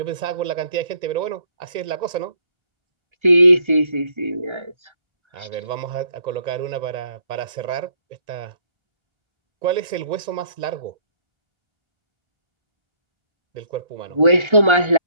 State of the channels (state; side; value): late; left; 1.3 ms